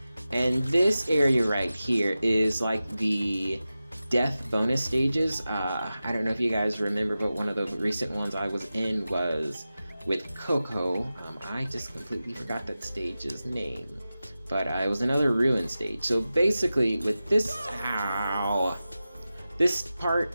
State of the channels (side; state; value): both; inverted; correlation -0.94